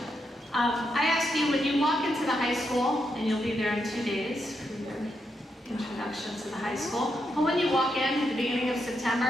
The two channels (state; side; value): normal; both; correlation 0.82